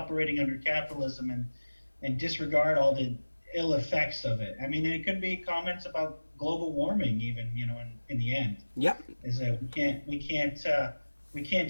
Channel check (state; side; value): inverted; both; correlation -1.00